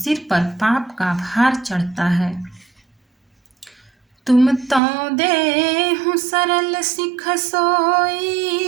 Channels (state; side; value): drops out; left; at 4.8 s